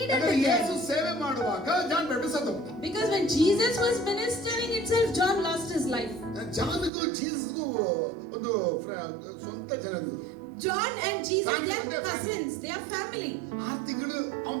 it Yesu again. ಸೇವೆ ಮಾಡುವಾಗ ಜಾನ್ ಬ್ಯಾಪ್ಟಿಸ್ಟ್ ಸತ್ತೋದ. Because when Jesus was ministering itself, John lost his life. ಜಾನ್ಗೂ ಜೀಸಸ್ಗೂ ಒಂದು ಸ್ವಂತ ಜನರು. John and Jesus, Family, they they're are cousins, they are family. 6 ತಿಂಗಳು ಅವನು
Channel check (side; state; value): left; drops out; at 6.9 s